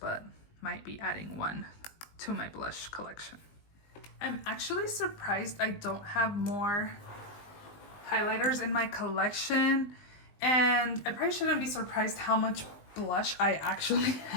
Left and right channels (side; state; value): right; late; 19 ms